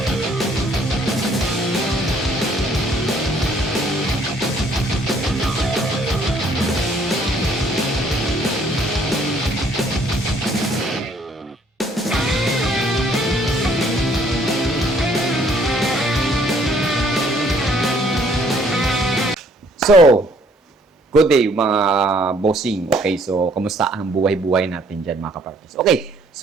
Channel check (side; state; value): both; normal; correlation 0.63